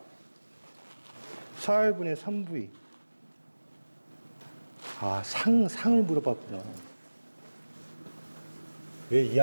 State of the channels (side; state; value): both; inverted; correlation -1.00